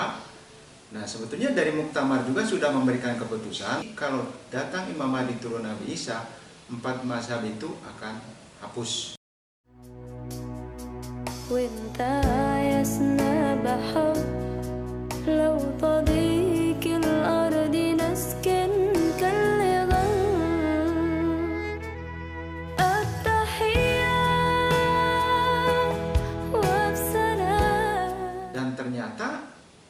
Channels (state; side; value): identical; both; correlation 1.00